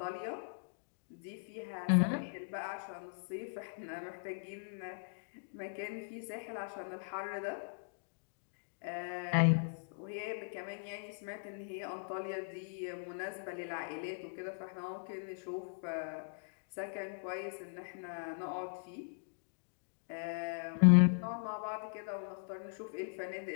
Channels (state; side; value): silent; right; digital silence